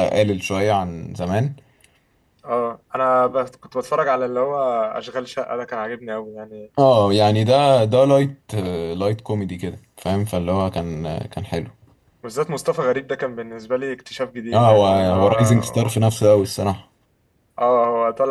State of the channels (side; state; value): both; identical; correlation 1.00